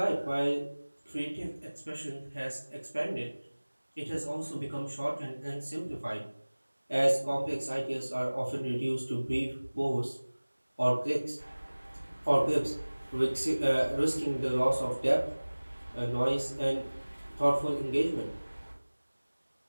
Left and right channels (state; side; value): inverted; both; correlation -1.00